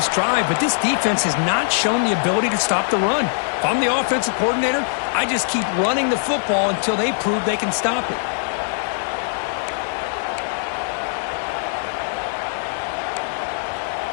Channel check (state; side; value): silent; right; digital silence